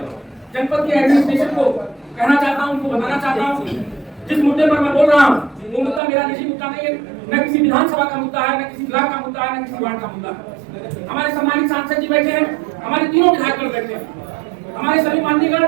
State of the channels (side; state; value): left; drops out; at 6.0 s